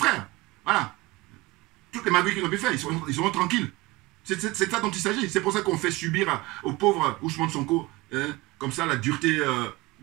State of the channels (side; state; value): left; quieter; 21.3 dB